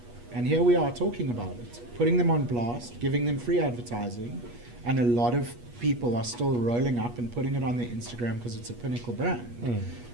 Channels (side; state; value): left; late; 8.3 ms